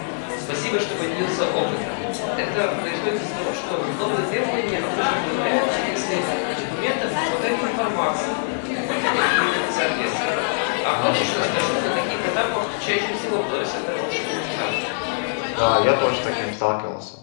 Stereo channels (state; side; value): silent; right; 63 dB below the other